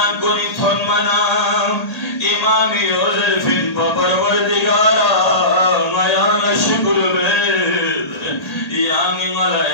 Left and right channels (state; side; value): late; right; 1.8 ms